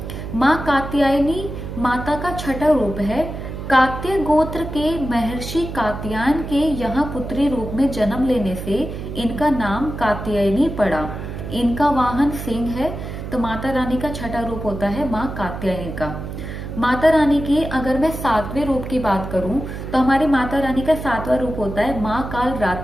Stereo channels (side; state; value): right; noise; hum, 8 dB below the sound